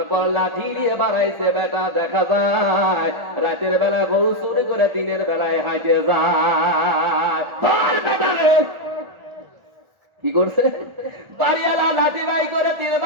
পর লাঠি দিয়ে বাড়াইছে। বেটা, দেখা যায় রাতের বেলা গরু চুরি করে দিনের বেলায় হাঁটে যায়। ধর বেটারে। কি করছে? বাড়িওয়ালা লাঠি বাই করে তিন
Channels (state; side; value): late; left; 1.4 ms